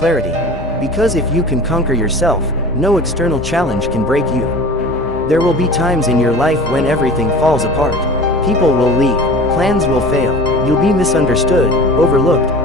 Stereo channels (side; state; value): both; normal; correlation 0.39